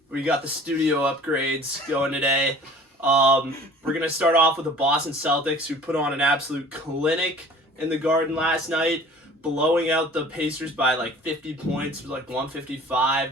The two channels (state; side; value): normal; both; correlation 0.47